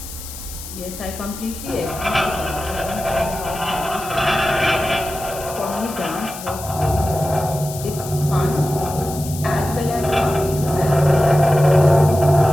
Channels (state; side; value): noise; left; hiss, 12 dB below the sound